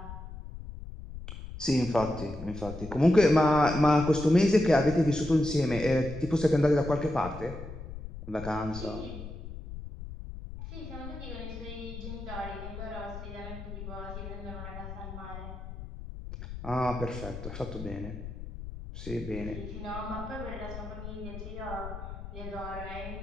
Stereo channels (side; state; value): left; noise; rumble, 10 dB below the sound